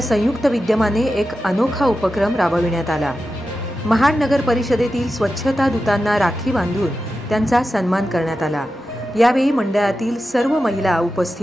संयुक्त विद्यमाने एक अनोखा उपक्रम राबविण्यात आला। महाड नगर परिषदेतील स्वच्छता दूतांना राखी बांधून त्यांचा सन्मान करण्यात आला। यावेळी मंडळातील सर्व महिला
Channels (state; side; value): normal; both; correlation 0.91